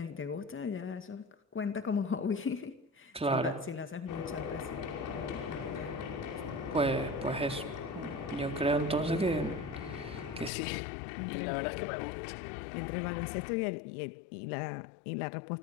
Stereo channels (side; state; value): right; drops out; at 10.5 s